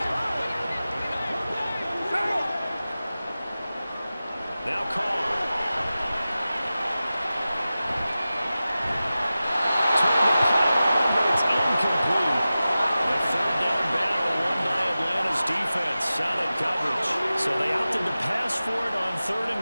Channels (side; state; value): both; inverted; correlation -0.95